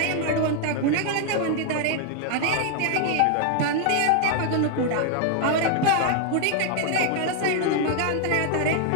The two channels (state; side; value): different; both; correlation 0.00